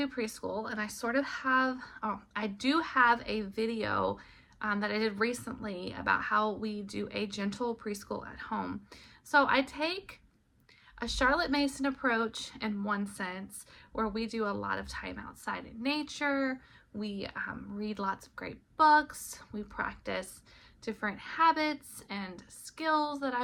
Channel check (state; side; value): identical; both; correlation 1.00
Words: preschool, and I sort of have, I do have a video that I did recently about how we do a gentle preschool at home. So I take a Charlotte Mason approach in one sense, where we do a lot of time outside in nature. We read lots of great books. We practice different habits and skills that I